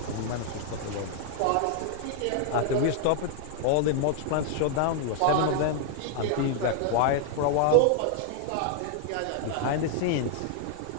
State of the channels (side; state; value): both; different; correlation 0.00